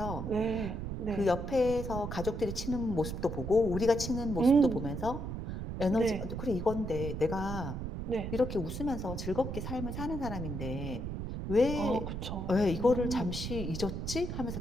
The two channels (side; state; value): right; noise; rumble, 5 dB below the sound